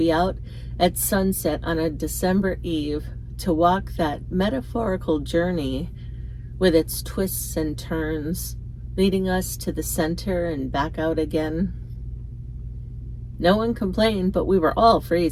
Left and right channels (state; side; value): identical; both; correlation 1.00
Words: out at sunset on a December eve, to walk that metaphorical journey with its twists and turns, leading us to the center and back out again. No one complained, but we were all